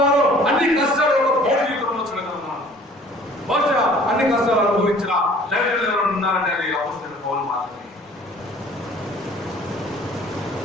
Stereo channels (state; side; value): normal; both; correlation 0.52